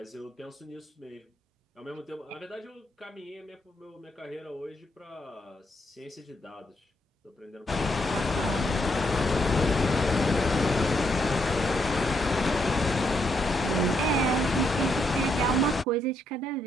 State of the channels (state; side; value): normal; both; correlation 0.76